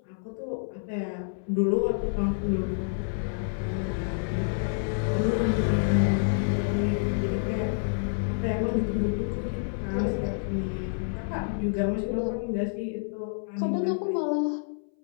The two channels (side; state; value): right; silent; 59 dB below the other